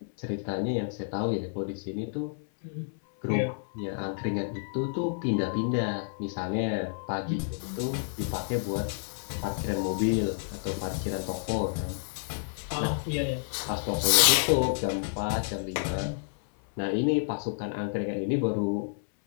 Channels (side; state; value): right; silent; 57 dB below the other